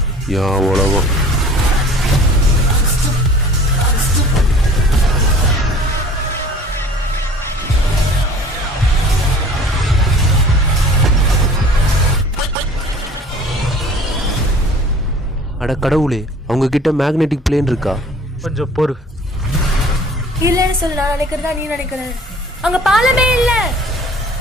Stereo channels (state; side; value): normal; both; correlation 0.48